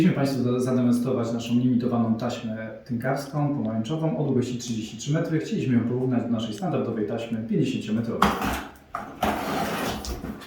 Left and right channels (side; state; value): both; identical; correlation 1.00